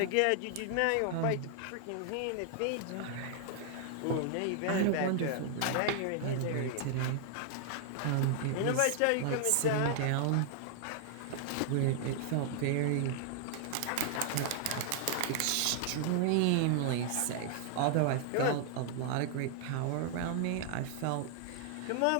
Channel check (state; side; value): different; both; correlation 0.00